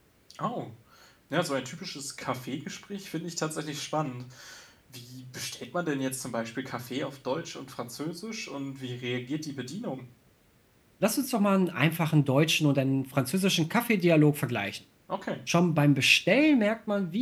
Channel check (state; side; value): identical; both; correlation 1.00